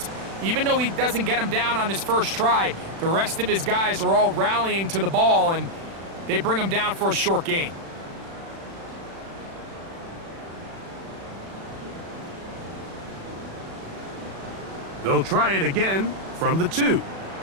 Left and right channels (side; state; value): left; late; 36 ms